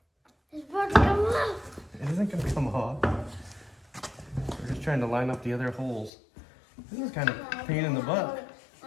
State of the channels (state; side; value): drops out; right; at 6.1 s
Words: It's about to come off. It isn't gonna come off. We're just trying to line up the other holes. This is kind of a pain in the butt.